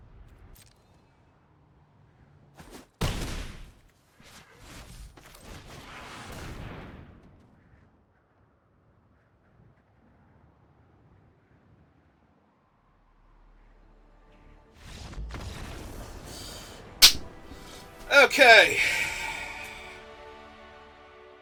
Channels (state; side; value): identical; both; correlation 1.00